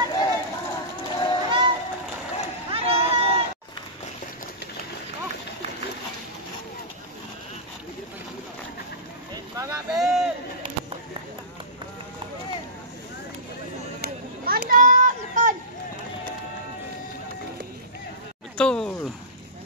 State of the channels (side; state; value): both; normal; correlation -0.19